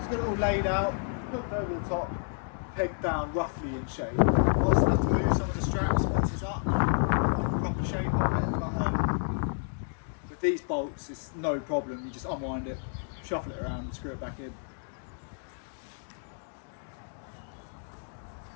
Got it all laid out, hooked over the top, pegged down roughly in shape. I also have to move some of the straps once it's up, like the proper shape of it. But with these bolts, it's no problem. You just unwind it, shuffle it around, and screw it back in.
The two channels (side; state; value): right; silent; digital silence